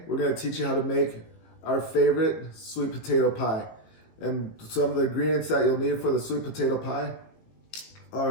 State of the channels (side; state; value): right; late; 18 ms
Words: we're going to teach you how to make our favorite sweet potato pie. And some of the ingredients that you'll need for the sweet potato pie